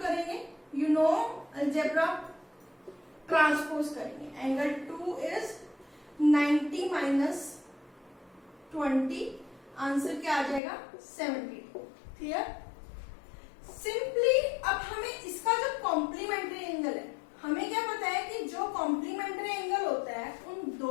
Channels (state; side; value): drops out; right; at 10.6 s